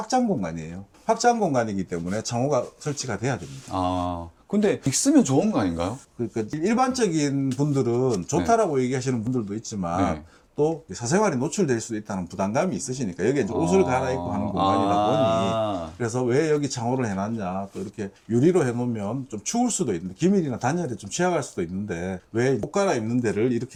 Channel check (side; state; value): both; identical; correlation 1.00